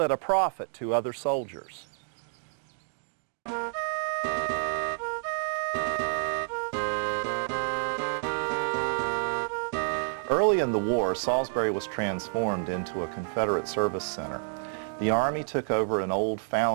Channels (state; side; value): silent; left; digital silence